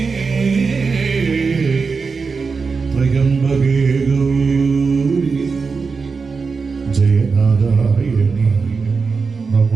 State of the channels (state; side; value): quieter; left; 4.8 dB